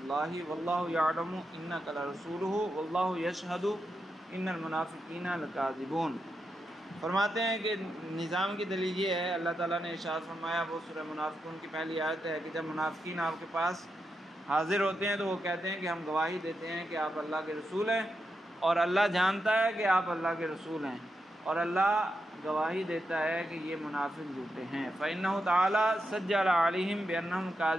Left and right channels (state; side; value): normal; both; correlation 0.86